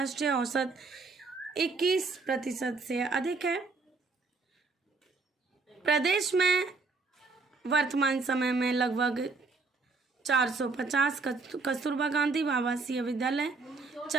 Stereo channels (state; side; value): quieter; left; 4.0 dB